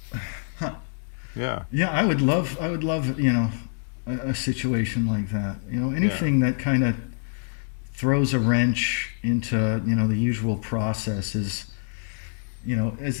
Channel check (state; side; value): silent; right; digital silence